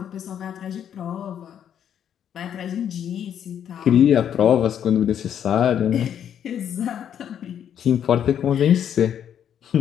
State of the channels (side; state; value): right; quieter; 9.3 dB